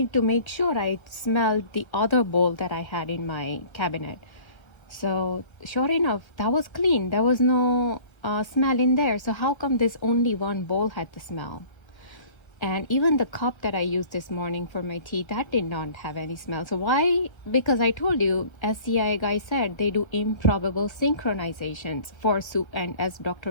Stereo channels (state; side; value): late; right; 1.2 ms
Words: to make sure, I smelled the other bowl that I had in my cabinet. So sure enough, that was clean. There was no smell in there. So how come this only one bowl had the smell? And even the cup that I used this morning for my tea, that did not have any smell. So why? Because I told you, as CIA guy said, they do improbable synchronizations for and as